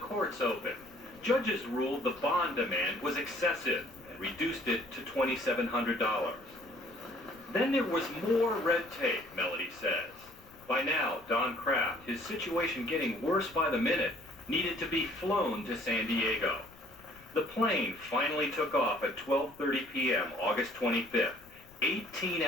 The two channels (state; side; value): noise; left; rumble, 25 dB below the sound